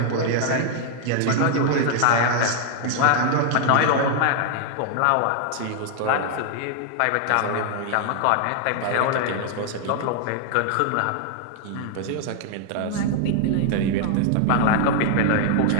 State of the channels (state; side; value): different; both; correlation 0.00